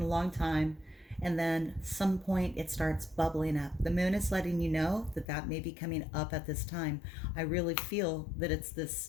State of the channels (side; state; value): right; drops out; at 5.2 s